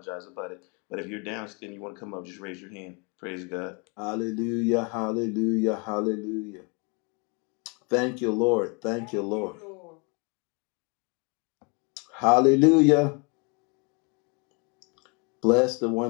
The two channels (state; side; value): quieter; right; 33.0 dB